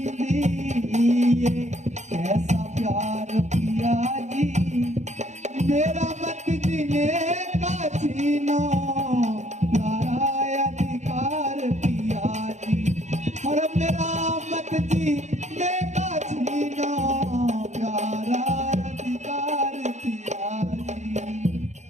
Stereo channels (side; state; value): left; late; 0.34 ms